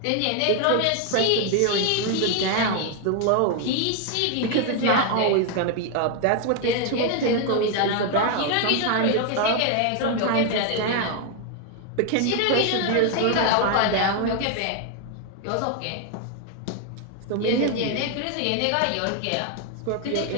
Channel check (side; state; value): both; different; correlation 0.00